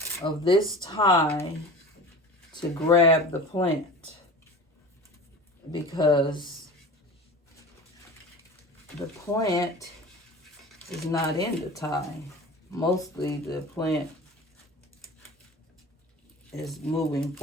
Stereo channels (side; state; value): both; normal; correlation 0.36